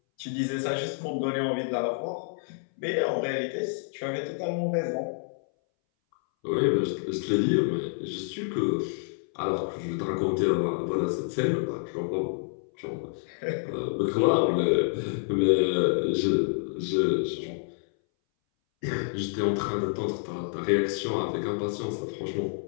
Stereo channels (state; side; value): silent; right; 59 dB below the other